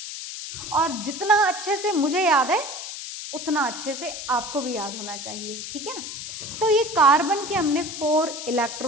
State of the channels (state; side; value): noise; left; hiss, 8 dB below the sound